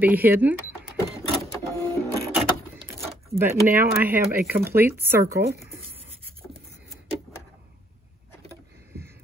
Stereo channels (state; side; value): normal; both; correlation 0.67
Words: hidden. But now I have a complete circle.